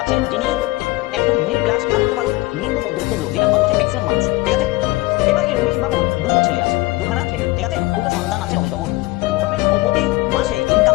আছেন যিনি একজন মিডল ক্লাস না বলতে পারো নিম্ন মধ্যবিত্ত লোক, যেটা ভারতবর্ষের ম্যাক্সিমাম মানুষ, ঠিক আছে? এবার এই রমেশ বাবুর দুটো ছেলে আছে, দুখানা ছেলে, ঠিক আছে? দুটো সন্তান আছে রমেশ বাবুর। রমেশ বাবু প্রতি মাসে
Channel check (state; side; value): quieter; right; 21.1 dB